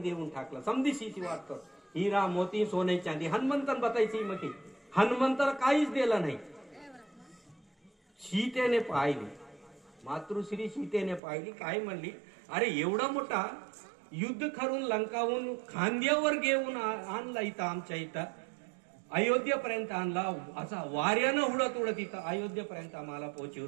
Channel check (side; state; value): left; drops out; at 11.2 s